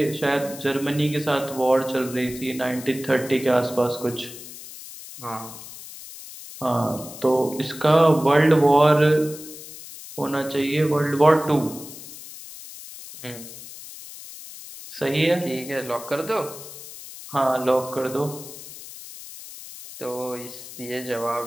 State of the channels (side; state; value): left; noise; hiss, 14 dB below the sound